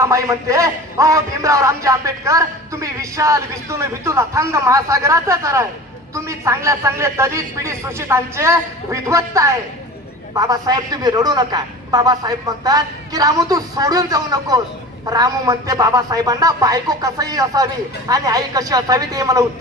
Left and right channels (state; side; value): normal; both; correlation 0.37